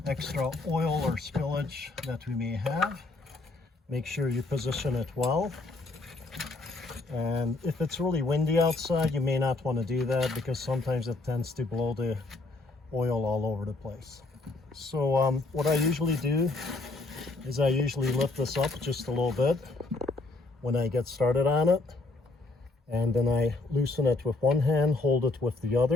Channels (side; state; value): right; quieter; 3.3 dB